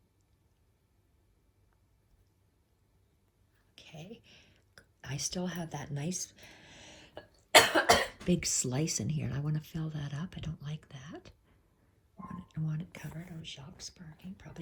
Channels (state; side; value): identical; both; correlation 1.00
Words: Okay, I still have that nice big slice in here, and I want to fill that up. I don't like that. I want it covered. Oh, Jacques barking.